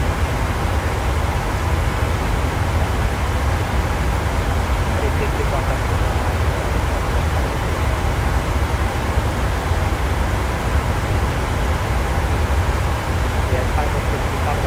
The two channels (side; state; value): both; identical; correlation 1.00